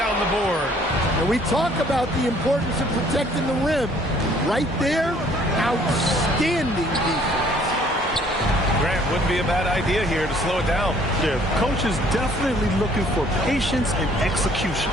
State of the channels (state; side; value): normal; both; correlation 0.60